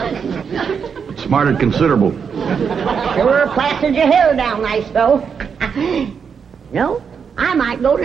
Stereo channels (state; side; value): quieter; left; 6.5 dB